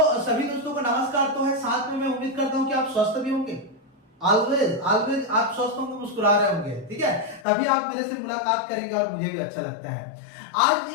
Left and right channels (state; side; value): drops out; right; at 7.5 s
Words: सभी दोस्तों को नमस्कार तो है, साथ में मैं उम्मीद करता हूँ कि आप स्वस्थ भी होंगे। ऑलवेज आप स्वस्थ होंगे, मुस्कुरा रहे होंगे, ठीक है, तभी आप मेरे से मुलाकात करेंगे और मुझे भी अच्छा लगता है। आज